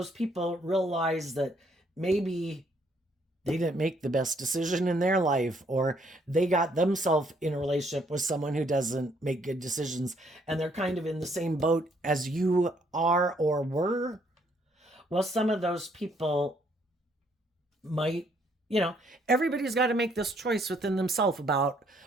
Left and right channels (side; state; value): both; normal; correlation 0.68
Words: people realize that maybe they didn't make the best decision in their life, or they got themselves in a relationship with someone who doesn't make good decisions, and they're kind of in the same boat as you are or were, well, some of those people might, everybody's got to make this choice within themselves about